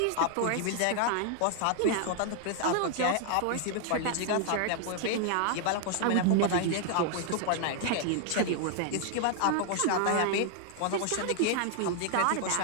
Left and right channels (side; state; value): both; different; correlation 0.00